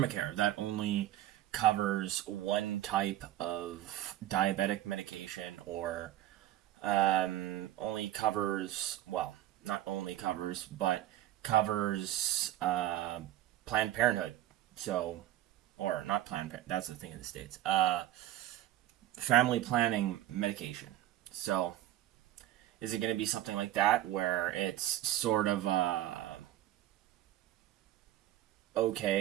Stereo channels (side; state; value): left; quieter; 13.6 dB